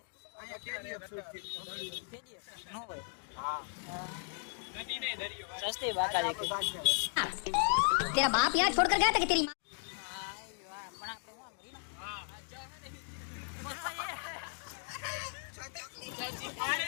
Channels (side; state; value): right; silent; 54 dB below the other